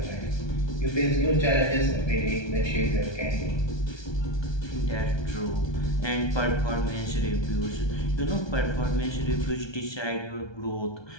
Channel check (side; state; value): right; late; 1.2 ms